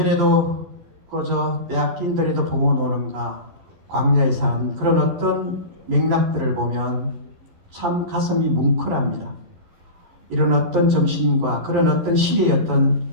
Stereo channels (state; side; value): late; left; 12 ms